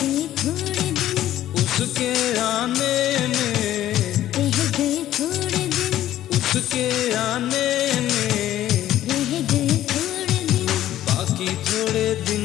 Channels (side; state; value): right; quieter; 13.0 dB